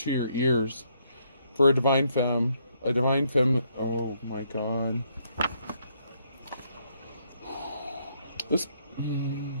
your ears for a divine femme. A divine femme. Oh my god. This.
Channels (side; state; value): both; inverted; correlation -0.72